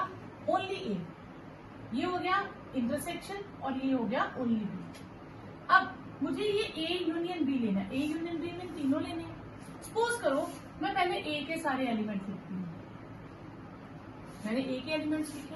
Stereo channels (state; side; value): identical; both; correlation 1.00